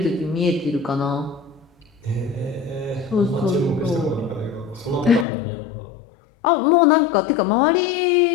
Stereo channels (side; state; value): right; drops out; at 5.2 s